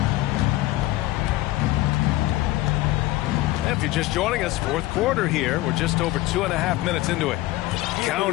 If you're just joining us, fourth quarter here. We're just over 2.5 minutes into it.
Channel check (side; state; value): right; quieter; 17.4 dB